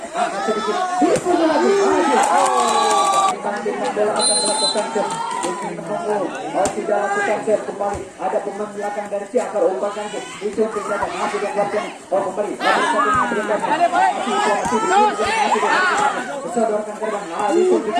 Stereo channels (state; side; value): identical; both; correlation 1.00